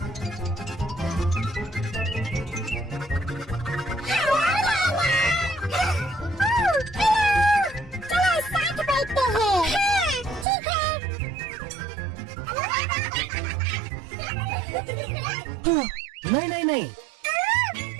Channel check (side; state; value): left; drops out; at 10.5 s